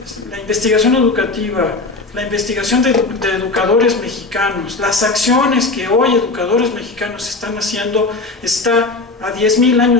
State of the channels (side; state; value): right; quieter; 3.5 dB